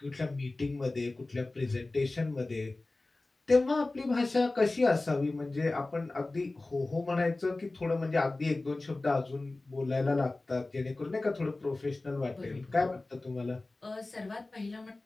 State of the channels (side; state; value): right; quieter; 3.1 dB